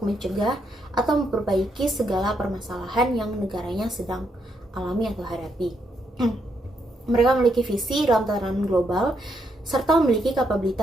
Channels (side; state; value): both; normal; correlation 0.77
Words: mencegah atau memperbaiki segala permasalahan yang negaranya sedang alami atau hadapi. Mereka memiliki visi dalam tatanan global serta memiliki